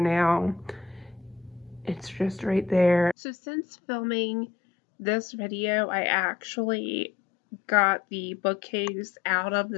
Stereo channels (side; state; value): right; drops out; at 3.2 s